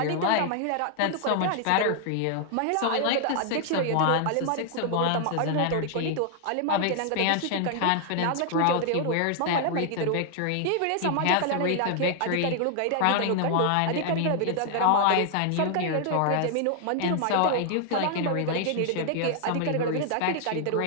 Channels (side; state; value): both; different; correlation 0.00